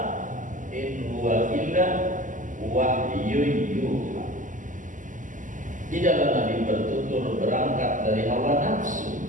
in huwa illa wahyun yuha. Tidaklah Nabi bertutur berangkat dari hawa nafsu,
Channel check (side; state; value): left; late; 0.37 ms